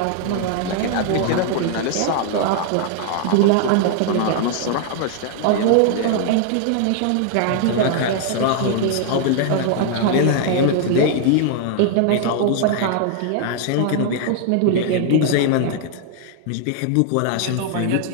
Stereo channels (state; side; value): different; both; correlation 0.00